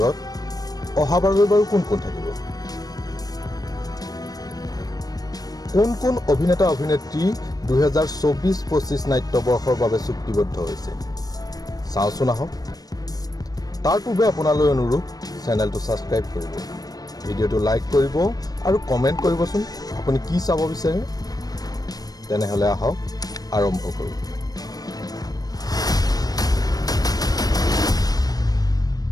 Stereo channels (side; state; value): right; late; 0.19 ms